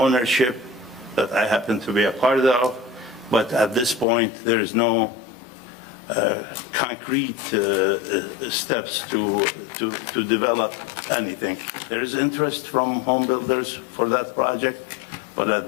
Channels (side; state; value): right; drops out; at 4.0 s